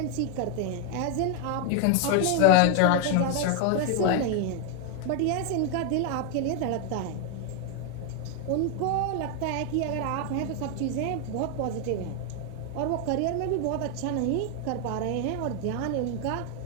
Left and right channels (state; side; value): different; both; correlation 0.01